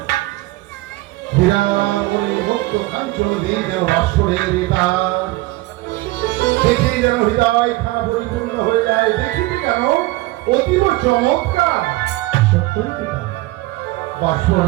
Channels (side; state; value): left; quieter; 19.6 dB